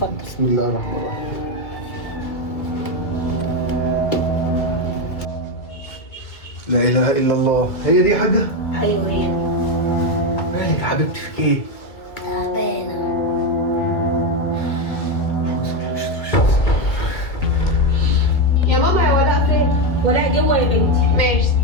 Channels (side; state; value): right; late; 2.3 ms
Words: بسم الله الرحمن الرحيم. لا اله الا الله. هي دي يا حاجه؟ ايوه هي. مالك يا حبيبتي في ايه؟ تعبانة. يا ماما يا ولاء فين؟ ولاء جوه يا بنتي. ماشي.